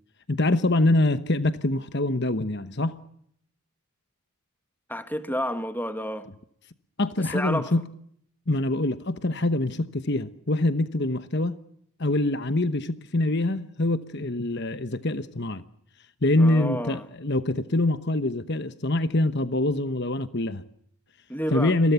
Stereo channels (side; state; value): both; normal; correlation 0.62